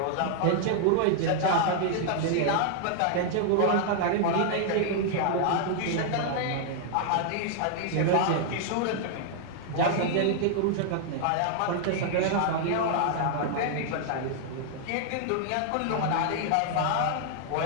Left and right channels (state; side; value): different; both; correlation -0.01